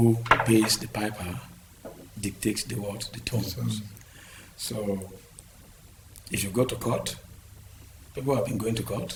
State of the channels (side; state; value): both; identical; correlation 1.00